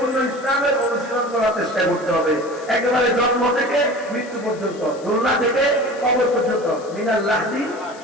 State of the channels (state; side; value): noise; left; hiss, 22 dB below the sound